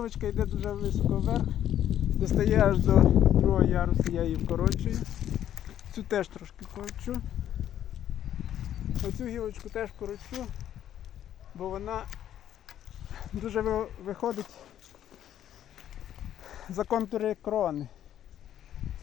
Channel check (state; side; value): quieter; right; 11.0 dB